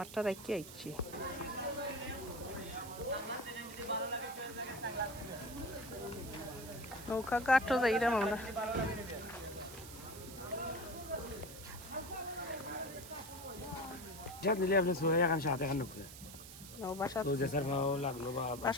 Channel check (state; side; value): noise; right; hiss, 14 dB below the sound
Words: রাখি আইছি। নৌকা ঘাটও যাইলাম আমরা। যা নিলে আপনি সোয়া এখন সাথে এখন লোক বাসা তো জেসার ভাও লাগলো বা